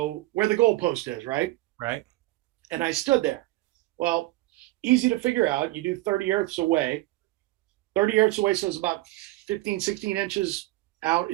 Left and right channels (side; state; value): left; quieter; 18.5 dB